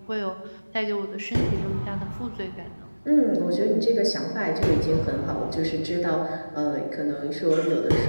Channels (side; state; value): both; inverted; correlation -1.00